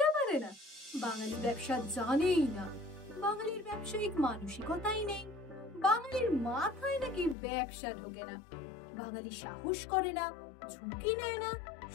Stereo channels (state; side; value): drops out; right; at 7.4 s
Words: পারে না, বাঙালি ব্যবসা জানেই না, বাঙালির ব্যবসায়িক মানসিকতাই নেই, বাঙালির মাথায় নাকি ব্যবসা ঢোকে না, বাঙালি সাহস করে না, ঝুঁকি নেয় না,